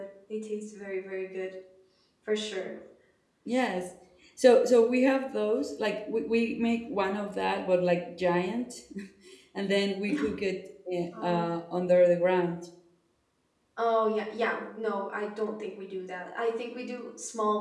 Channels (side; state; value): both; identical; correlation 1.00